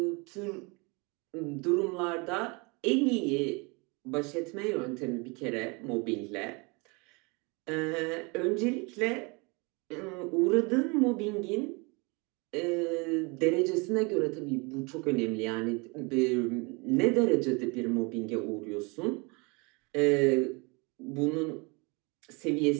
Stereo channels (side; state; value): left; quieter; 29.1 dB